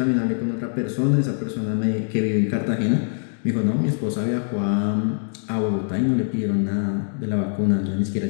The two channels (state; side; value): silent; right; digital silence